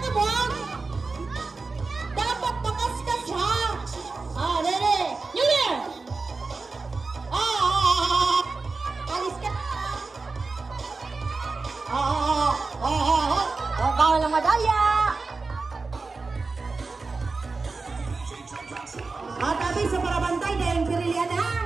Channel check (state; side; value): quieter; left; 4.0 dB